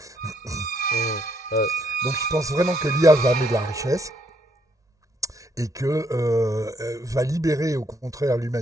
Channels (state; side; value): normal; both; correlation 0.72